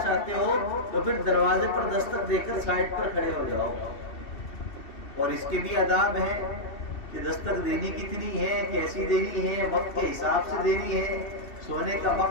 چاہتے ہو تو پھر دروازے پر دستک دے کر سائڈ پر کھڑے ہو جاؤ۔ اور اس کے بھی آداب ہیں کہ دستک دینی کتنی ہے، کیسی دینی ہے، وقت کے حساب سے دینی ہے۔ سونے کا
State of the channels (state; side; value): late; right; 2.7 ms